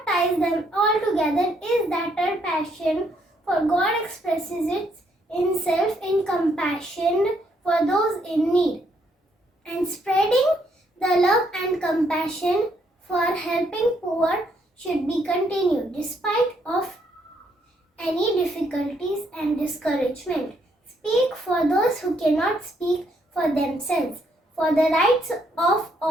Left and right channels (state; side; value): normal; both; correlation 0.72